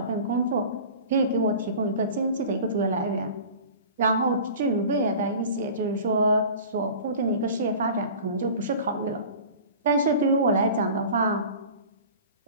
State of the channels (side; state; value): both; inverted; correlation -0.40